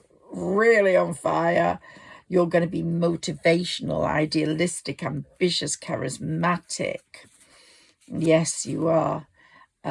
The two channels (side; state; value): both; identical; correlation 1.00